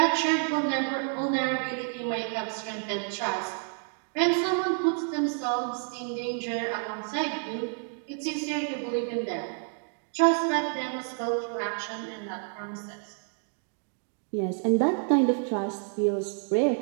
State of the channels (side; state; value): left; silent; 59 dB below the other